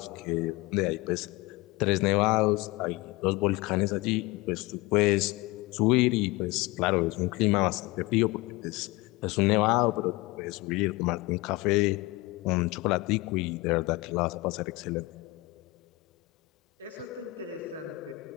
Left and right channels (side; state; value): right; quieter; 21.6 dB